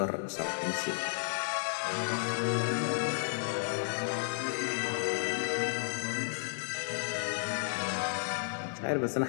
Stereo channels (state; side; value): silent; right; 56 dB below the other